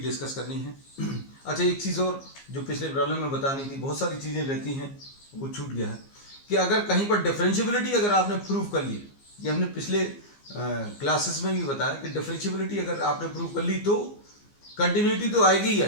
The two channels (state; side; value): late; right; 15 ms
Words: करनी है। अच्छा, एक चीज़ और जो पिछले प्रॉब्लम में बतानी थी, बहुत सारी चीज़ें रहती हैं वो छूट गया है, कि अगर कहीं पर डिफरेंशियबिलिटी अगर आपने प्रूव कर ली, ये हमने पिछले क्लासेस में भी बताया कि डिफरेंशियबिलिटी अगर आपने प्रूव कर ली तो कंटिन्यूटी तो आएगी ही